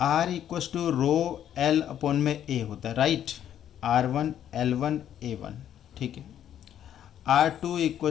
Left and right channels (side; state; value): right; quieter; 10.4 dB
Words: equals to rho L upon में ए होता है, राइट, R1 L1 A1, ठीक है। R2